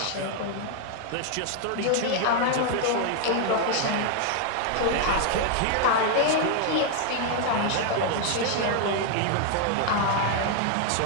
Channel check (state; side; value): different; both; correlation 0.00